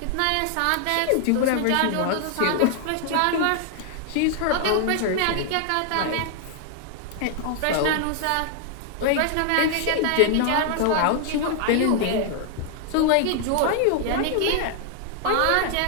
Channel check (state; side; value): different; both; correlation 0.00